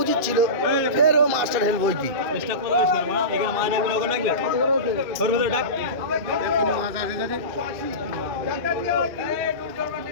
উচিত ছিল, ফের ও মাস্টার হেল্প হইতি।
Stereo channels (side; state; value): left; late; 2.9 ms